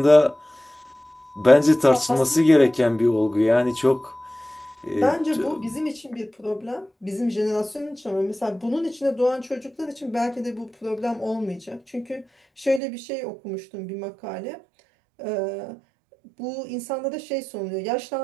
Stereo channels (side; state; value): left; drops out; at 12.8 s